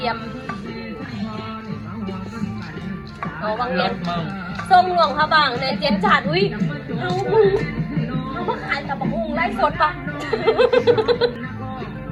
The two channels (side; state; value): both; identical; correlation 1.00